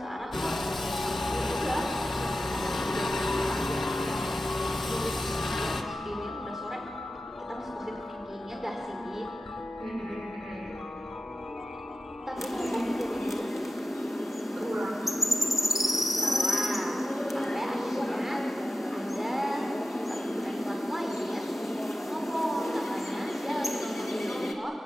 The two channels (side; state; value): both; normal; correlation 0.93